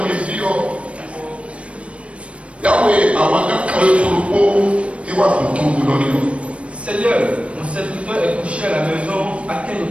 Seigneur, mon serviteur est couché à la maison, atteint de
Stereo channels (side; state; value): left; late; 0.062 ms